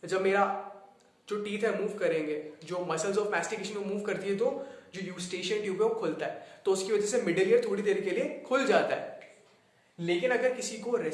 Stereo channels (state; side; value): identical; both; correlation 1.00